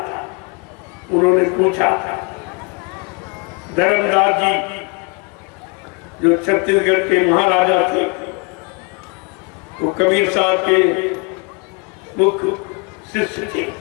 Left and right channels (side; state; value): right; quieter; 31.8 dB